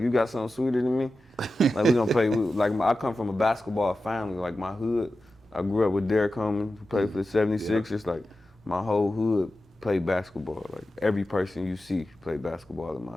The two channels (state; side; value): normal; both; correlation 0.93